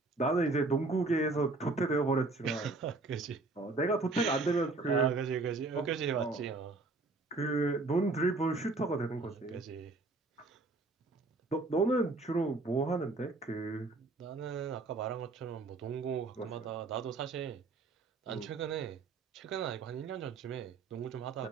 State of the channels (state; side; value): quieter; left; 3.5 dB